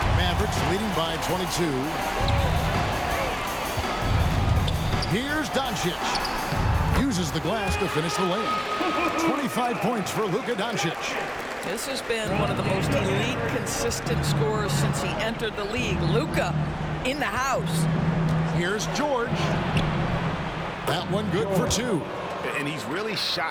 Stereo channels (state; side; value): identical; both; correlation 1.00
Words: Mavericks leading by 22. Here's Doncic. Uses the glass to finish the lane. 25 points for Luka Doncic. This has been one of the most elite, consistent scorers since he entered the league. Luka in the house. Here's George. That one good for 2. And he's really